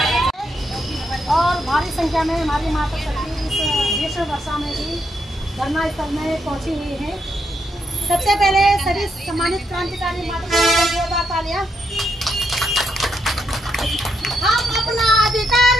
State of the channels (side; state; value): both; normal; correlation 0.79